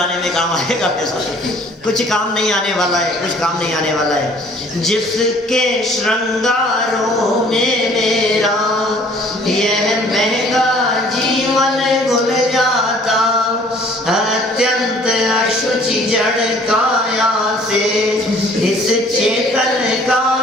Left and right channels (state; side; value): normal; both; correlation 0.55